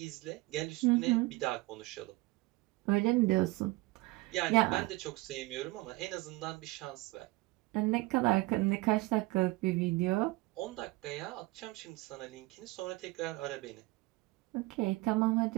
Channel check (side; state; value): left; quieter; 21.9 dB